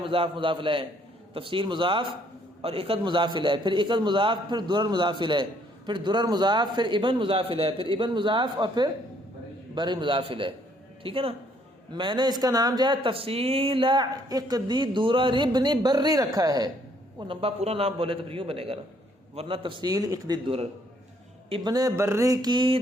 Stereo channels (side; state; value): both; normal; correlation 0.66